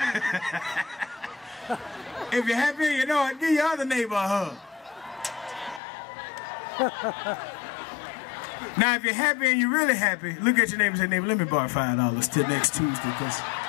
If you're happy and you know it, give your other neighbor a hug. Now, if you're happy and you're really happy, look at your neighbor and say, neighbor, let me borrow $5 till next Tuesday, because...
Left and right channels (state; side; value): drops out; right; at 5.8 s